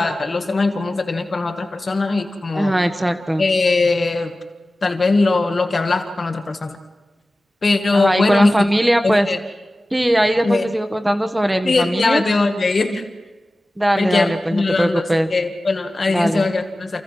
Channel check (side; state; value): both; normal; correlation 0.96